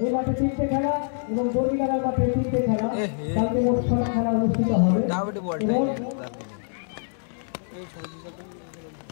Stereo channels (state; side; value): silent; right; digital silence